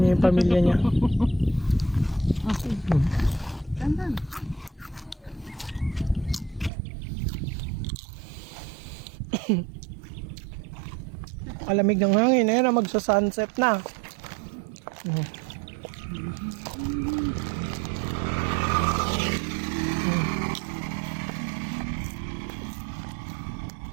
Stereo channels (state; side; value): drops out; left; at 6.7 s